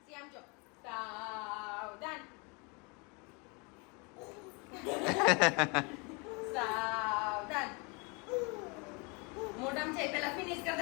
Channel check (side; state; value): right; quieter; 30.7 dB